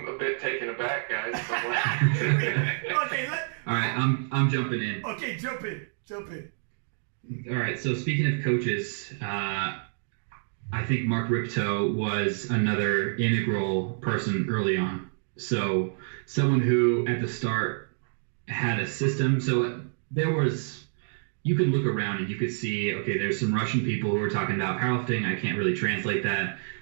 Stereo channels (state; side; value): silent; left; digital silence